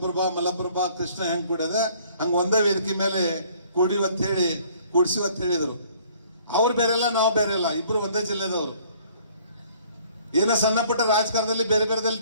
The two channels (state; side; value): inverted; both; correlation -0.58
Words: ಮಲಪ್ರಭಾ, ಕೃಷ್ಣ ಹೆಂಗ್ ಕೂಡಿದೆ ಹಂಗ ಒಂದೇ ವೇದಿಕೆ ಮೇಲೆ ಕೂಡಿವತ್ತು ಹೇಳಿ ಕೂಡಿಸಿವತ್ತು ಹೇಳಿದರು. ಅವ್ರು ಬೇರೆಲ್ಲ, ನಾವು ಬೇರೆ ಇಲ್ಲ, ಇಬ್ರು ಒಂದೇ ಜಿಲ್ಲೆದವರು. ಏನೋ ಸಣ್ಣ ಪುಟ್ಟ ರಾಜಕಾರಣದಲ್ಲಿ ಬೇರೆ ಬೇರೆದಲ್ಲಿ